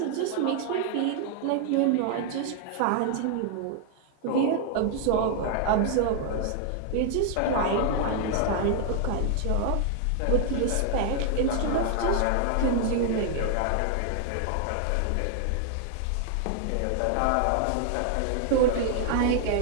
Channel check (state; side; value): different; both; correlation 0.00